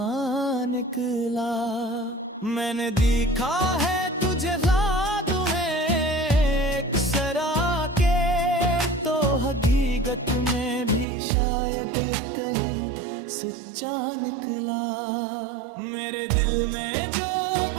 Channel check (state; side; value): drops out; left; at 11.1 s